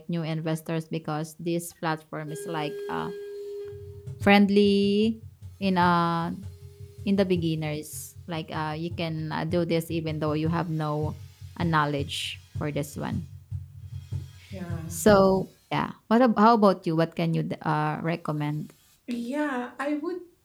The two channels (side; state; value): both; identical; correlation 1.00